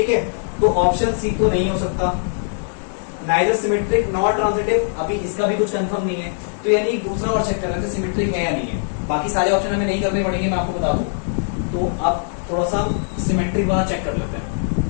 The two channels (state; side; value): silent; right; 65 dB below the other